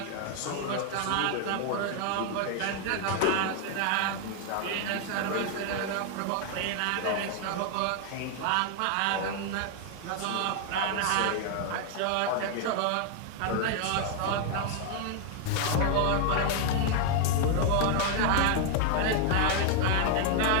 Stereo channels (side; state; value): both; different; correlation 0.00